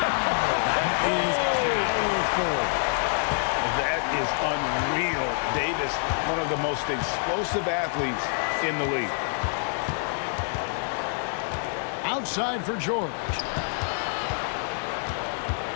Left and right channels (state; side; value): silent; right; 60 dB below the other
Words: That is powerful. That is unreal. Davis, one of the most explosive athletes in the league. Outside for George.